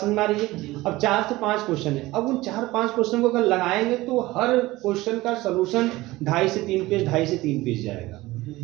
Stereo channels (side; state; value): left; quieter; 18.8 dB